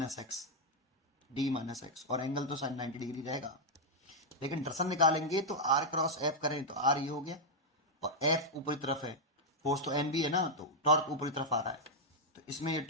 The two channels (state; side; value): normal; both; correlation -0.02